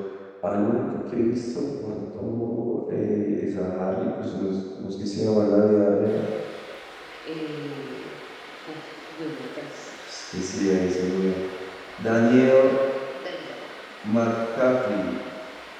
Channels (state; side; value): identical; both; correlation 1.00